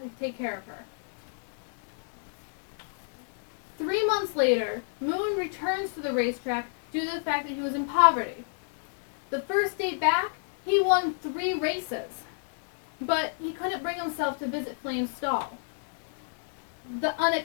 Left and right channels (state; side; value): silent; right; digital silence